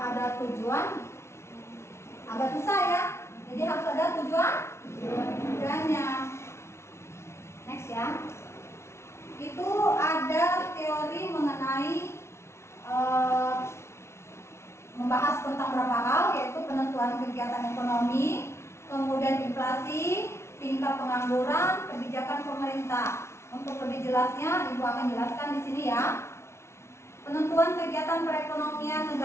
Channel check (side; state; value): right; late; 0.13 ms